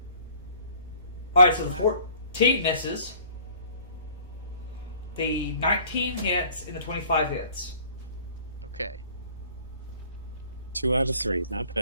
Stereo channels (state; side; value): inverted; both; correlation -0.53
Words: All right, so the 14 misses. The 19 hits and the 25 hits. Okay. 2 out of 3, not